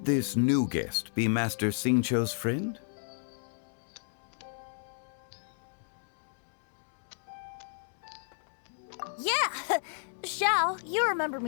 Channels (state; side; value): silent; right; digital silence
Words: this new guest be Master Xingqiu's friend? Yeah! Xiao, you remember